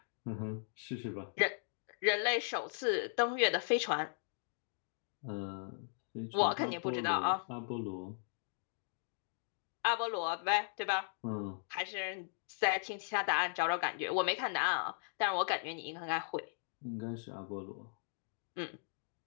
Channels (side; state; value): right; silent; digital silence